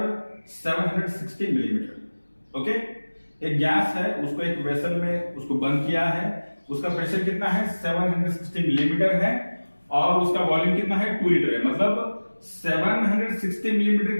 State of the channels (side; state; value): both; inverted; correlation -1.00